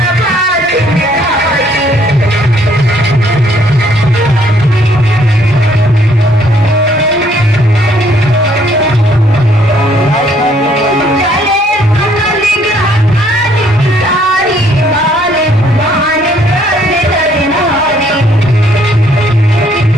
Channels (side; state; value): both; normal; correlation 0.65